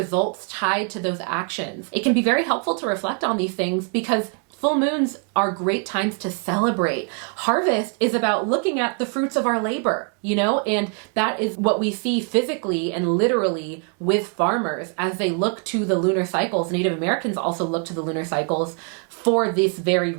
tied to those actions? It can be very helpful to reflect on these things because full moons are great times to celebrate. Harvest is about looking at the fruits of our labor, and that is what we see physically and literally with farmers as they look to the lunar cycles. Native Americans also look to the lunar cycles for this very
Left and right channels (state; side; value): quieter; left; 40.0 dB